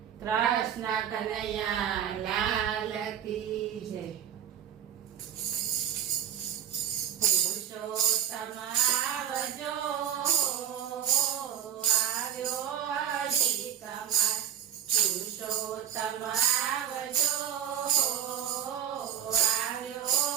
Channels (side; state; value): left; quieter; 9.7 dB